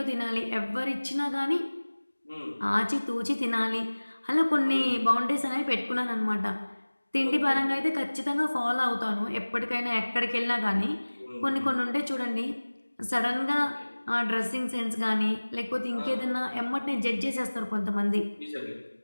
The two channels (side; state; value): both; inverted; correlation -1.00